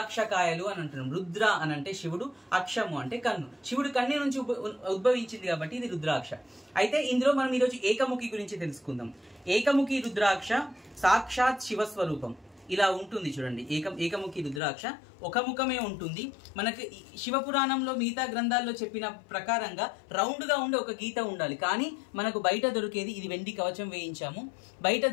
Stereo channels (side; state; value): right; drops out; at 14.6 s